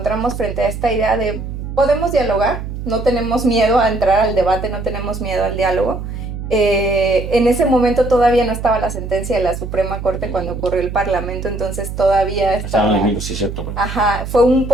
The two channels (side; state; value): right; noise; hum, 7 dB below the sound